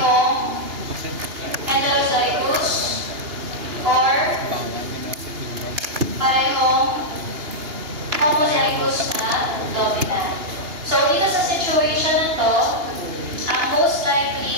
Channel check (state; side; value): late; left; 2.8 ms